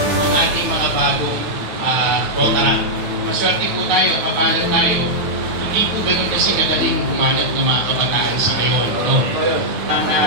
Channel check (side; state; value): left; late; 9.3 ms